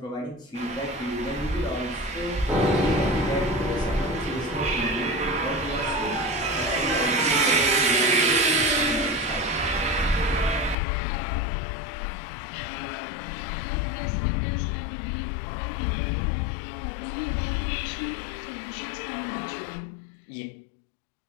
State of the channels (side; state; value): right; drops out; at 10.8 s